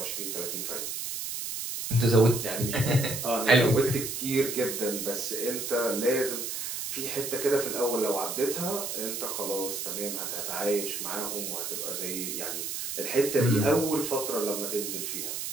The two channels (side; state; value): right; noise; hiss, 4 dB below the sound